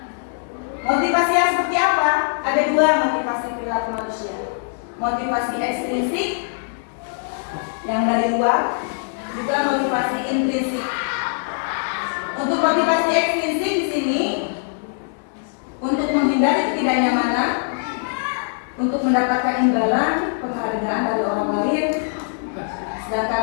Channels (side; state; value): right; silent; digital silence